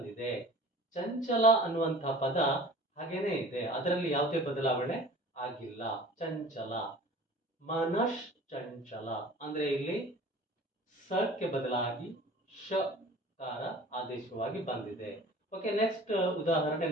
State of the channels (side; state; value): both; normal; correlation 0.44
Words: ಚಂಚಲ ಅನ್ನುವಂತಹ ಪದ ಹಾಗೇನೆ ಇದೆ, ಅದರಲ್ಲಿ ಯಾವುದೇ ಬದಲಾವಣೆ ಆಗಿಲ್ಲ. ಚಂಚಲ, ಮನಶ್ ಚಂಚಲ ಅಂದ್ರೆ ಇಲ್ಲಿ ಸಕ್ಕೆ ಬದಲಾಗಿ ಶಕಾರ ಆದೇಶವಾಗಿ ಬಂದಿದೆ. ಓಕೆ, ನೆಕ್ಸ್ಟ್ ಉದಾಹರಣೆ